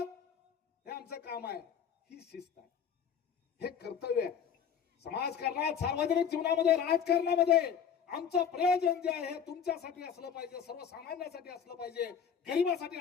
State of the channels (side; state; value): right; quieter; 7.8 dB